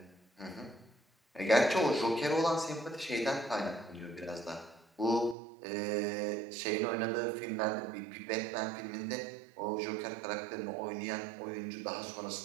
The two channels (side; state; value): left; drops out; at 5.4 s